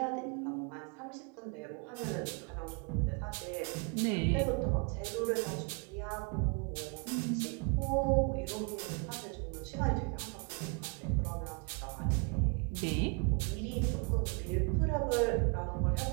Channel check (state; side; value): quieter; left; 35.2 dB